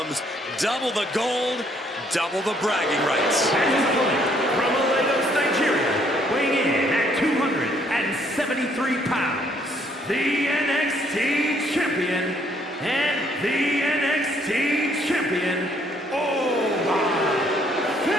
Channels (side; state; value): both; normal; correlation 0.66